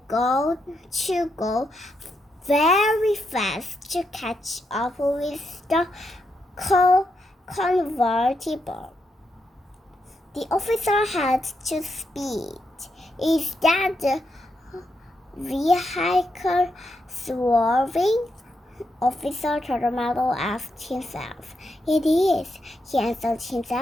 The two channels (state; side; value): normal; both; correlation 0.82